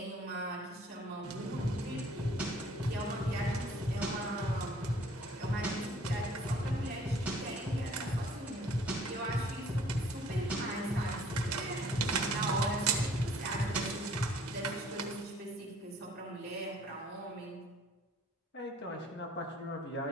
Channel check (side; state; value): both; normal; correlation 0.57